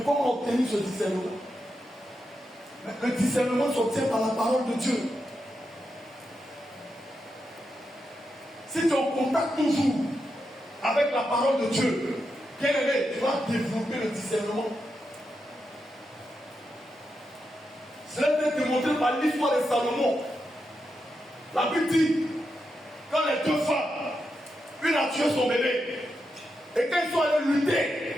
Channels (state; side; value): normal; both; correlation 0.86